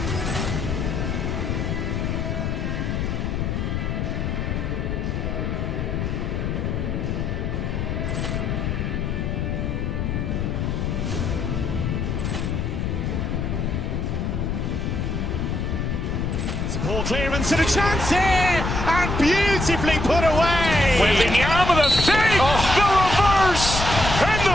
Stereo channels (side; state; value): left; noise; rumble, 1 dB below the sound